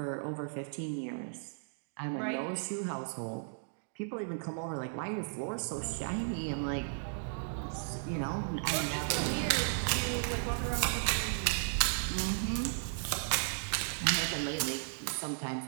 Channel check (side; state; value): left; silent; digital silence